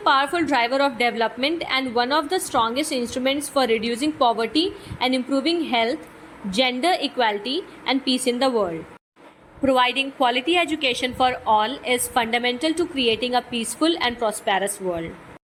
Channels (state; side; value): identical; both; correlation 1.00